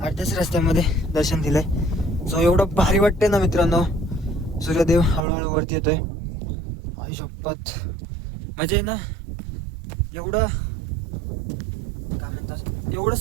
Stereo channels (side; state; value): left; drops out; at 5.2 s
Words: रस्त्यामध्ये दर्शन दिलंय. सो एवढं भारी वाटतंय ना मित्रांनो. सूर्यदेव हळूहळू वरती येतोय. आई शपथ म्हणजे ना एवढं काय म्हणतात, एवढं